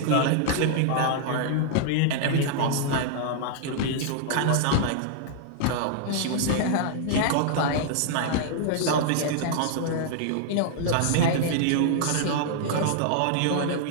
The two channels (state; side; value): different; both; correlation -0.01